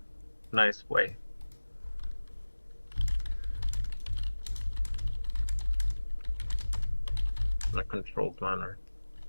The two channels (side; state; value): both; inverted; correlation -1.00